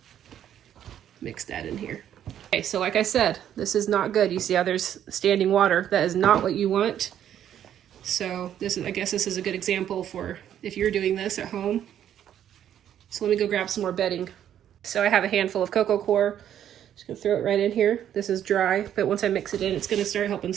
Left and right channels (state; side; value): quieter; left; 10.4 dB